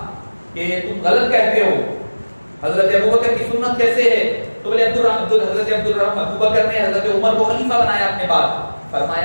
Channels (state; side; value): inverted; both; correlation -1.00